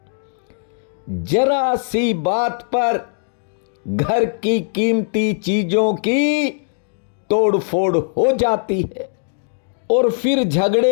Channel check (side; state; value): right; silent; 66 dB below the other